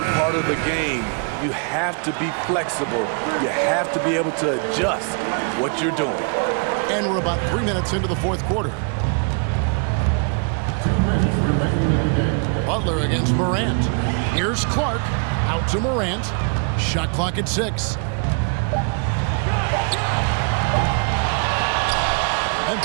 part of the game. You have to be flexible. You have to be able to adjust what you're doing. And we're about 3 minutes into the fourth quarter. 2 minutes remaining in the game. Butler against Morant. Here's Clark. Out to Morant. Shot clock at 6.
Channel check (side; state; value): left; quieter; 39.3 dB